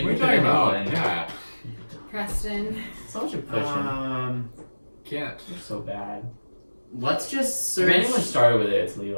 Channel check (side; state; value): both; inverted; correlation -1.00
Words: What are you can talking pick another about? one. Yeah. Preston. So much of pushing. Can't. You're so bad. Let's just If search. anyone started with it, it's